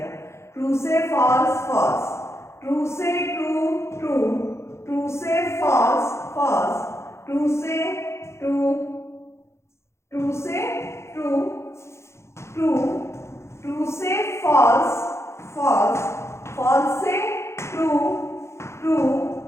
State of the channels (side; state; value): right; late; 0.13 ms